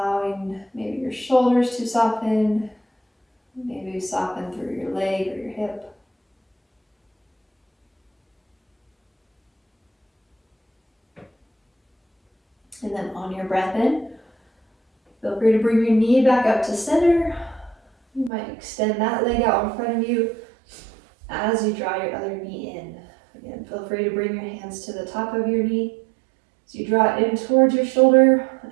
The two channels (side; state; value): left; drops out; at 18.3 s